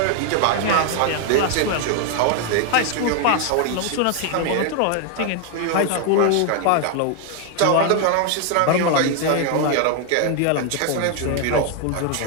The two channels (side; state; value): both; different; correlation 0.01